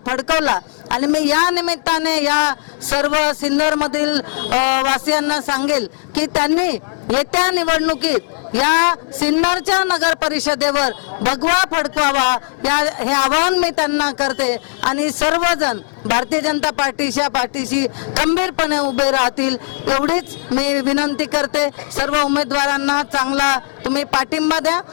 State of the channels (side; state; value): right; silent; digital silence